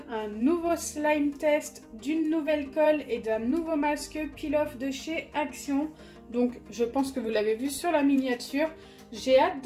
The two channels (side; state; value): both; identical; correlation 1.00